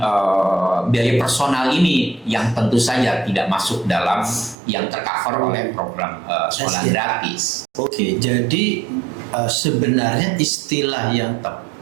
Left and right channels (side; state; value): left; drops out; at 4.5 s